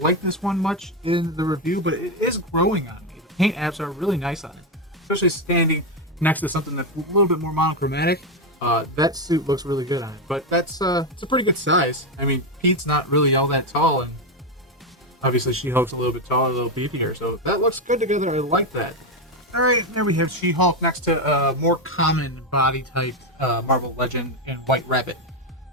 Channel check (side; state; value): both; normal; correlation 0.08